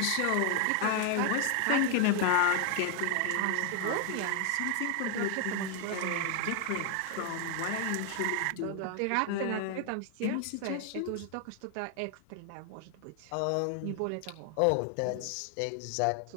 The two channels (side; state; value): both; different; correlation 0.00